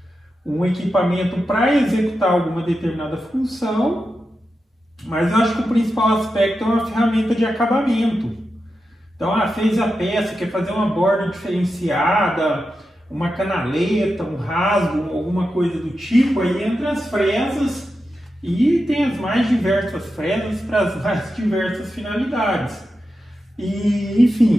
um equipamento para executar alguma determinada função. Mas eu acho que o principal aspecto é uma ferramenta de acabamento. Então, fez a peça, quer fazer uma borda diferenciada, uma canaleta, um rasgo, alguma coisa do tipo, aí entra as fresas e tem as mais diversas fresas para as mais diversas finalidades. E, enfim,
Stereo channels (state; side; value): normal; both; correlation 0.90